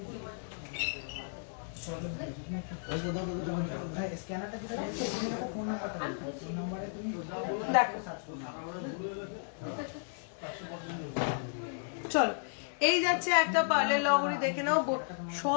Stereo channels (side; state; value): right; silent; digital silence